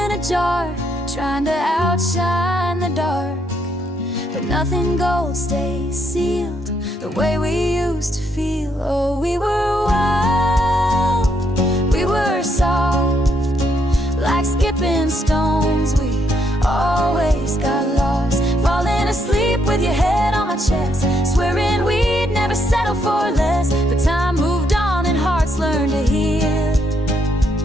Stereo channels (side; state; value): both; normal; correlation 0.75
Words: a jar, trying to outshine the dark, but nothing gold stays sealed the way we used to feel. Oh, we were wild, we were soft, like skipping stones. We always got lost, falling asleep with your head on my chest, swearing we'd never settle for less. But time moved on and hearts learned to heal.